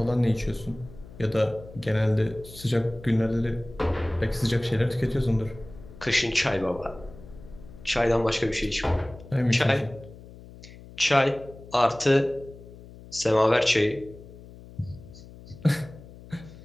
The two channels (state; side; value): noise; left; hum, 18 dB below the sound